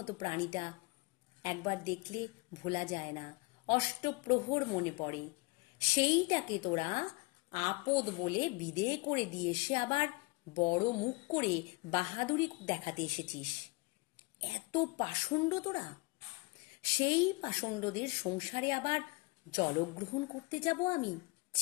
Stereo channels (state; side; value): quieter; right; 26.9 dB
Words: প্রাণীটা একবার দেখলে ভোলা যায় না, অষ্টপ্রহর মনে পড়ে। সেইটাকে তোরা আপদ বলে বিদেয় করে দিয়ে এসে আবার বড় মুখ করে বাহাদুরি দেখাতে এসেছিস। এত পাষণ্ড তোরা! সেই পাষণ্ডদের সংসারে আবার জলগ্রহণ করতে যাব আমি?